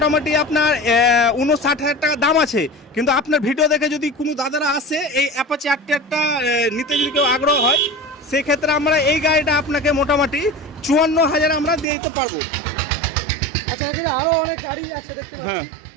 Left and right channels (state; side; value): drops out; left; at 11.9 s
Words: আপনার 59,000 টাকা দাম আছে। কিন্তু আপনার ভিডিও দেখে যদি কোনো দাদারা আসে এই অ্যাপাচি আরটিআরটা নিতে যদি কেউ আগ্রহ হয়, সেক্ষেত্রে আমরা এই গাড়িটা আপনাকে মোটামুটি 54,000 আমরা দিয়ে দিতে পারবো। আচ্ছা, এখানে আরো অনেক গাড়ি আছে দেখতে পাচ্ছি। হ্যাঁ,